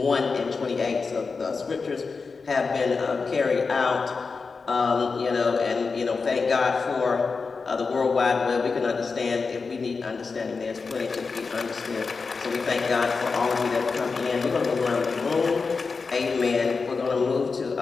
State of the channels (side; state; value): right; quieter; 4.6 dB